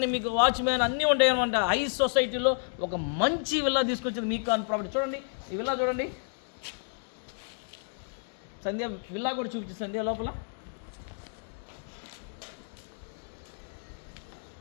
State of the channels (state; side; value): silent; right; digital silence